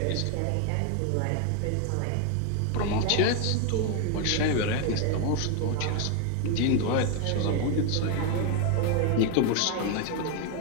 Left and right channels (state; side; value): different; both; correlation 0.01